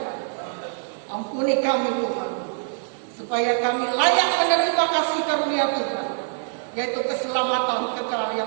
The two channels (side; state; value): left; silent; digital silence